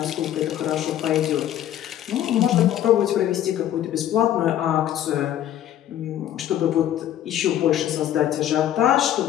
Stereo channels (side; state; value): right; quieter; 11.5 dB